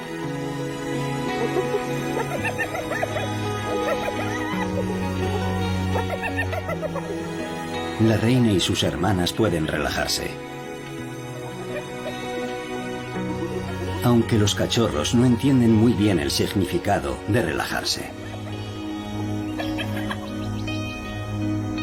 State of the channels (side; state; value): both; identical; correlation 1.00